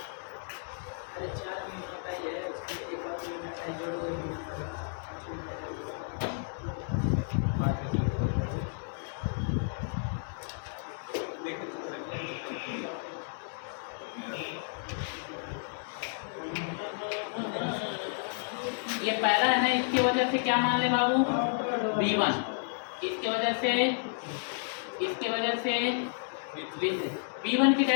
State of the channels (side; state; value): right; silent; digital silence